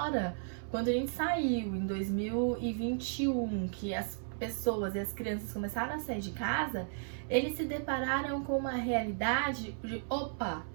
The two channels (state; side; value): silent; left; digital silence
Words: quando a gente saiu em 2021, que as pessoas e as crianças começaram a sair de casa, eles se depararam com uma realidade de, opa,